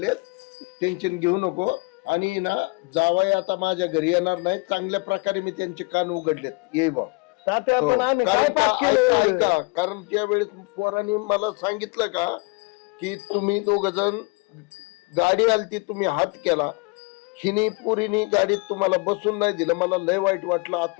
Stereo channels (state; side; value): quieter; right; 30.1 dB